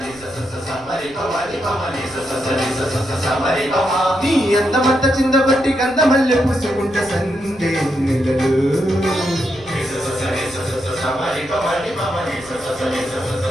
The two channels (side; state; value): right; noise; rumble, 25 dB below the sound